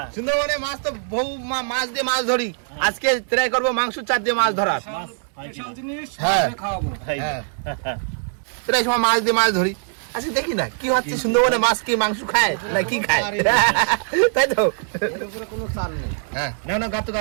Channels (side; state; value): left; silent; digital silence